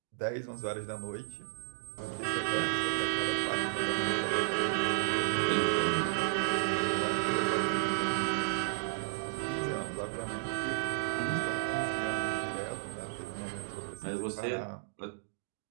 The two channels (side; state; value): left; silent; digital silence